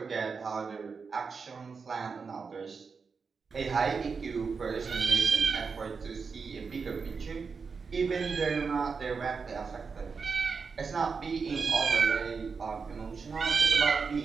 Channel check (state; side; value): quieter; left; 5.2 dB